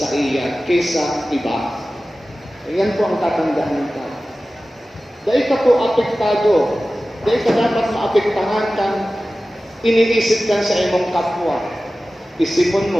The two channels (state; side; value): normal; both; correlation 0.96